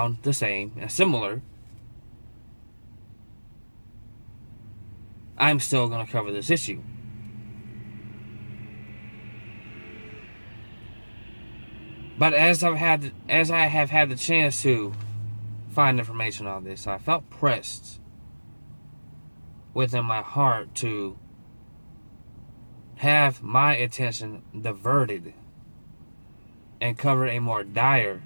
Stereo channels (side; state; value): both; inverted; correlation -1.00